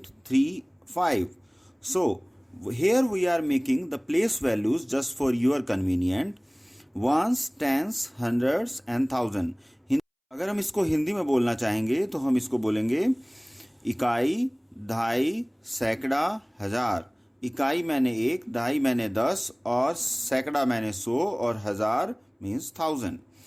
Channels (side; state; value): both; identical; correlation 1.00